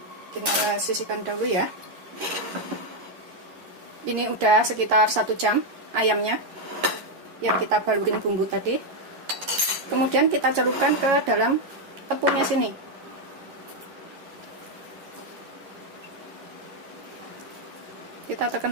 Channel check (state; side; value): late; left; 11 ms